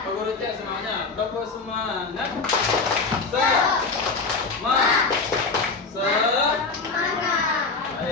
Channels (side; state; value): right; quieter; 4.1 dB